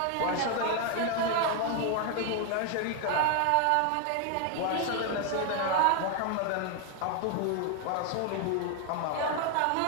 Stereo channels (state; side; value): different; both; correlation 0.00